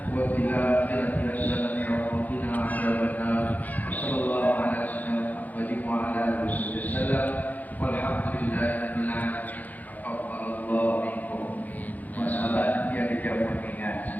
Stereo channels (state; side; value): late; right; 0.081 ms